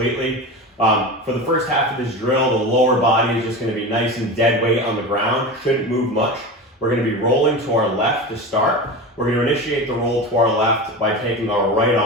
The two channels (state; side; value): normal; both; correlation 0.27